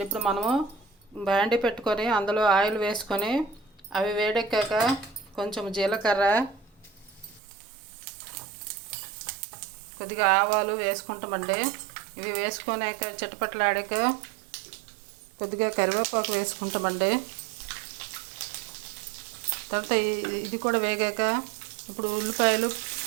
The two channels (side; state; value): left; drops out; at 7.4 s